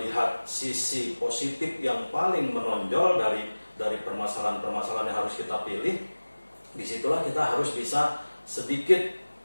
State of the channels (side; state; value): both; inverted; correlation -1.00